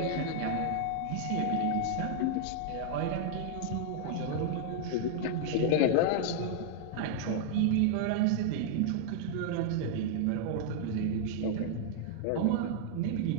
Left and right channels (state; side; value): different; both; correlation -0.01